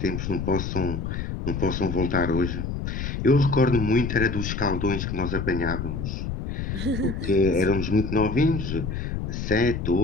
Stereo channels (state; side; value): noise; left; rumble, 4 dB below the sound